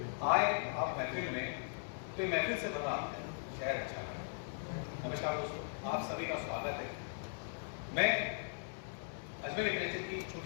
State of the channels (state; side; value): silent; right; 52 dB below the other